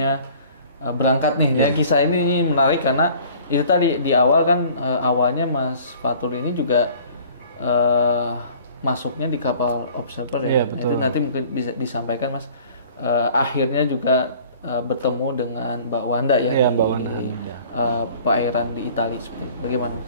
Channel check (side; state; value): both; inverted; correlation -0.50